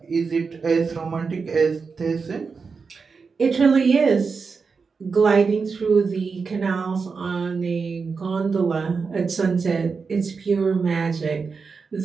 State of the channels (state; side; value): quieter; left; 5.0 dB